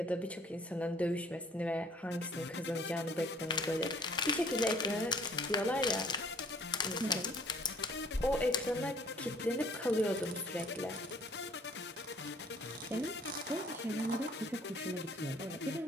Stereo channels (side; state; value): both; normal; correlation 0.56